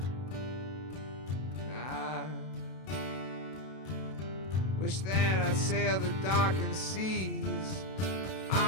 I wish that I'd sail the darkened seas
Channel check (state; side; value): late; right; 32 ms